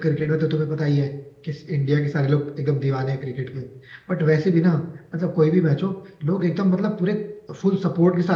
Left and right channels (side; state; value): both; identical; correlation 1.00